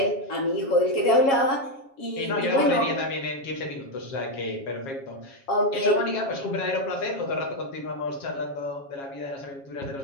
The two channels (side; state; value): right; late; 7.3 ms